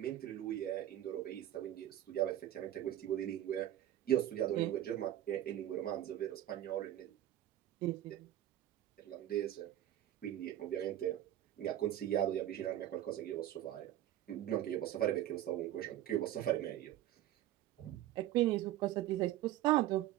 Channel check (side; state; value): left; quieter; 12.9 dB